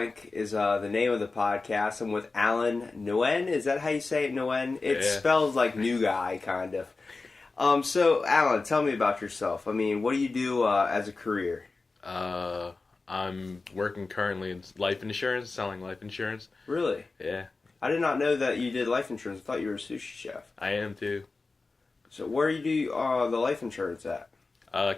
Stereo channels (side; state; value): right; quieter; 3.8 dB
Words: is the name of the podcast. I'm with Alan Nguyen. Is that how you say it, Nguyen? It spells like new guy, kind of. So, Alan, tell me about yourself. I mean, what do you do as a career? I'm working currently in life insurance, selling life insurance. Really? Yeah. I did not know that you did life insurance. I thought you were a sushi chef. I am too. So, where do you do the life insurance at?